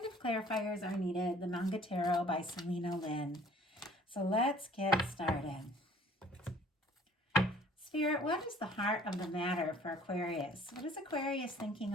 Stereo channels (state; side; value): normal; both; correlation 0.53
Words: if clarifiers are needed, the Manga Tarot by Selena Lynn. So let's get started. Spirit, what is the heart of the matter for Aquarius? What is Aquarius thinking